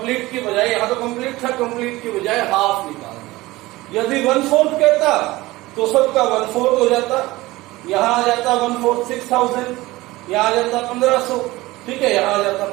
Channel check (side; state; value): left; quieter; 19.4 dB